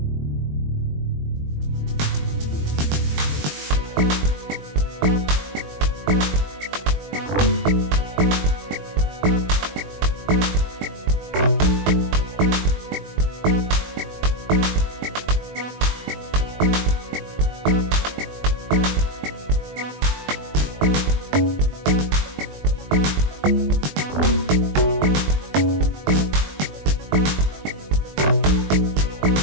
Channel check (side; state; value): left; late; 21 ms